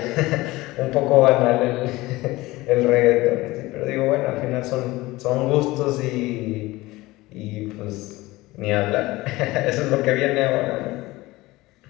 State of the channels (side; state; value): right; quieter; 19.6 dB